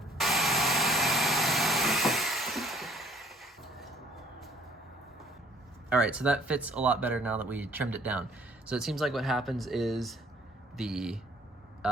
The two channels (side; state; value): both; normal; correlation 0.56